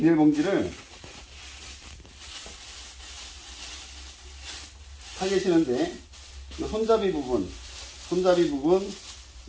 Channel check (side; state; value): both; identical; correlation 1.00